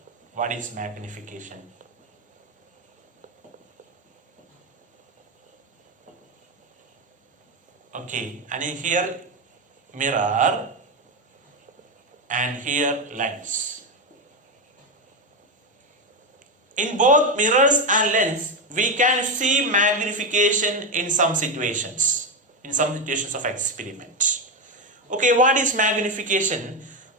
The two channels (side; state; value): both; normal; correlation 0.12